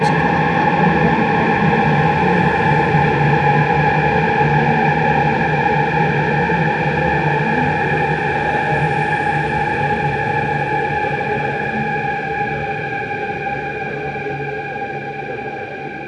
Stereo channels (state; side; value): identical; both; correlation 1.00